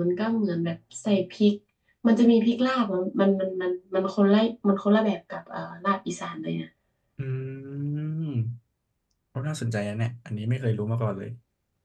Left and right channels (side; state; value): both; identical; correlation 1.00